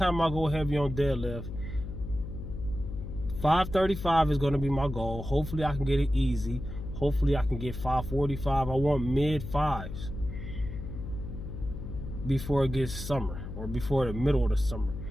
I go heavy on deadlift, 535 is going to be my goal. Hopefully I can get it easy. Hopefully I can get 545. I want mid fives before it gets summer or before the middle of the summer.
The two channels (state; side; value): noise; left; hum, 8 dB below the sound